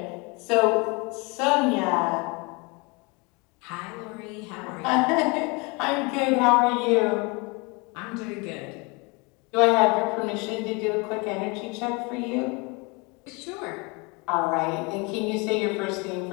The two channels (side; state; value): right; quieter; 28.7 dB